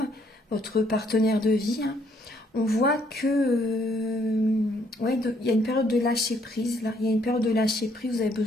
votre partenaire de vie. On voit que ouais, il y a une période de lâcher prise là. Il y a une période de lâcher prise. Vous avez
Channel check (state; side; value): normal; both; correlation 0.68